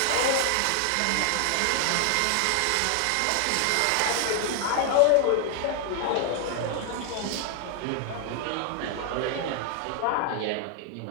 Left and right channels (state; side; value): different; both; correlation 0.00